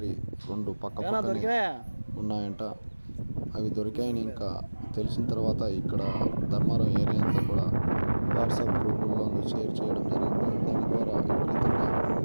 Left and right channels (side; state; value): both; inverted; correlation -1.00